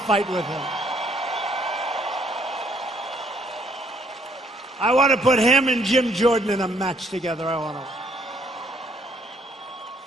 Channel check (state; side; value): normal; both; correlation 0.66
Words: with him. I want to put him and Jim Jordan in a match together. I want to.